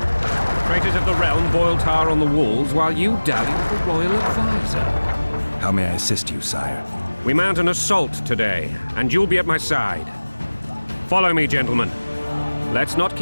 Traitors of the realm boil tar on the walls while you dally with the royal advisor. How may I assist you, sire? We mount an assault today, and you'll be at my side. Follow me, gentlemen. Let's not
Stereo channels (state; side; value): inverted; both; correlation -1.00